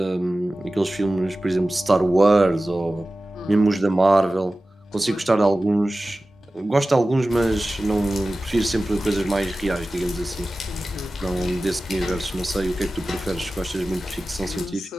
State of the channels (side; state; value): both; normal; correlation 0.96